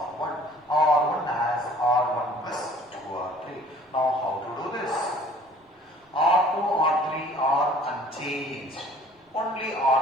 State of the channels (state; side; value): normal; both; correlation 0.52